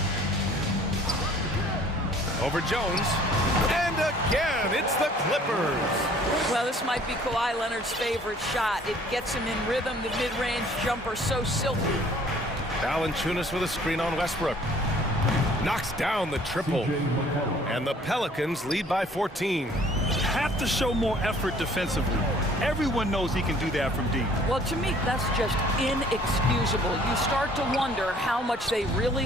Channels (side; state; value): both; normal; correlation 0.56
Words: Over Jones. And again, it's the Clippers. Well, this might be Kawhi Leonard's favorite shot. It gets him in rhythm, the mid-range jumper so silky. Valanciunas with a screen on Westbrook. Knocks down the triple. And the Pelicans lead by 14. Have to show more effort defensively. Everyone knows he can do that from deep. Well, to me, that's just inexcusable. You start to wonder how much they